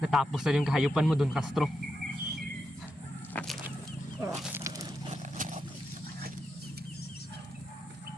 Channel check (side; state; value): both; normal; correlation 0.85